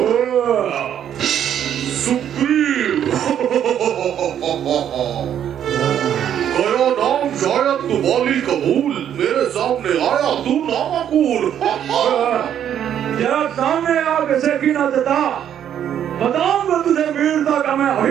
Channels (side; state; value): left; quieter; 9.8 dB